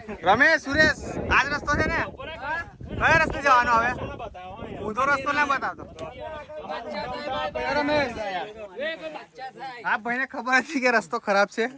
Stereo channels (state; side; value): identical; both; correlation 1.00